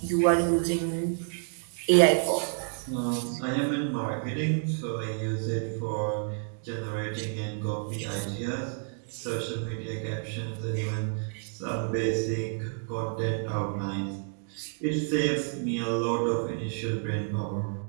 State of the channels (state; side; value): silent; left; 55 dB below the other